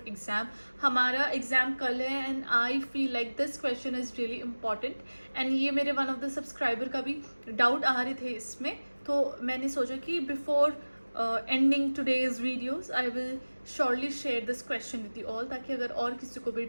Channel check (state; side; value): inverted; both; correlation -1.00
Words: हमारा एग्जाम कल है and I feel like this question is really important and ये मेरे वन ऑफ द सब्सक्राइबर का भी डाउट आ रहे थे इसमें, तो मैंने सोचा कि before ending today's videos I will surely share this question with you all, ताकि अगर और किसी को भी